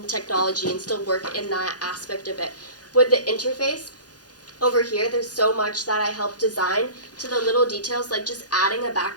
technology and still work in that aspect of it. With the interface, over here, there's so much that I help design to the little details, like just adding a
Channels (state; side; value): late; right; 0.69 ms